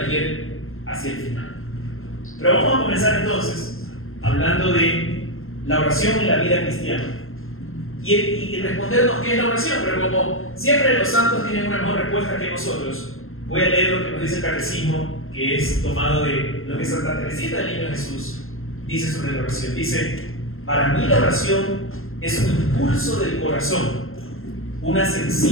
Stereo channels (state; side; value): late; right; 0.61 ms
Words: hacia el final. Pero vamos a comenzar entonces hablando de la oración en la vida cristiana y respondernos qué es la oración. Pero como siempre los santos tienen una mejor respuesta que nosotros, voy a leer lo que nos dice el catecismo, que es tomado de lo que Santa Teresita del Niño Jesús dice sobre la oración. Dice: para mí la oración es un impulso del corazón, una